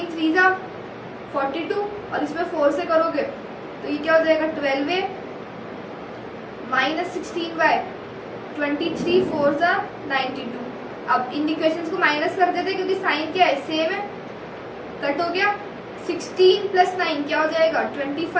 3 जा 42, और इसमें 4 से करोगे तो ये क्या हो जाएगा 12a माइनस 16y, 23 4 जा 92। अब इन इक्वेशंस को माइनस कर देते क्योंकि साइन क्या है सेम है, कट हो गया। 16 प्लस 9 क्या हो जाएगा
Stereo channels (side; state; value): both; identical; correlation 1.00